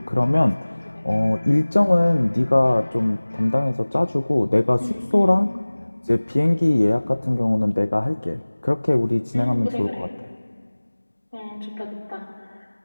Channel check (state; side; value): inverted; both; correlation -1.00